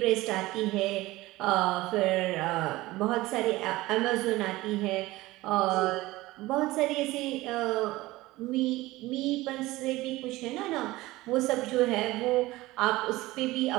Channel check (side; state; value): left; quieter; 18.9 dB